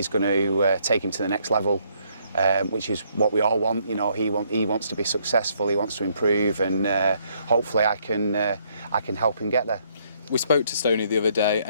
take him to the next level. Which is what we all want. He wants to be successful. He wants to improve, and hopefully I can help him get there. We spoke to Stoney the other day,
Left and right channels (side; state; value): both; inverted; correlation -0.69